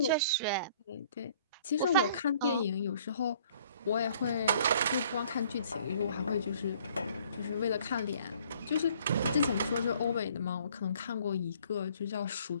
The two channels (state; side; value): inverted; both; correlation -0.58